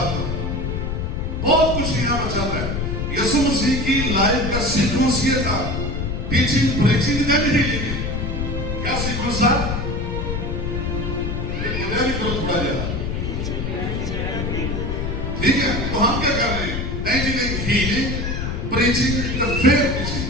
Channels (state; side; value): noise; left; rumble, 2 dB below the sound